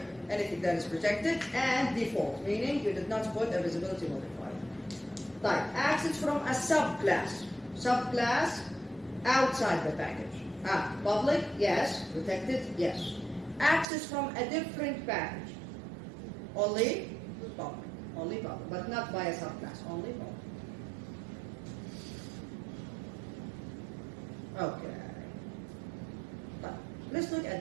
anything that is protected, and default, meaning you did not put a visibility modifier. Type. Access from a subclass. Subclass outside the package. Public, yes. Protected, yes. Access from a different package. Only public. Only public, but not by a subclass. Only public. Okay. But let's look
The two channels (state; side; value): drops out; left; at 13.9 s